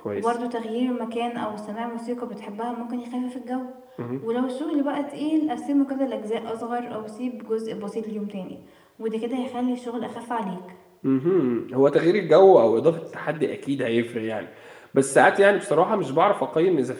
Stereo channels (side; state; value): both; identical; correlation 1.00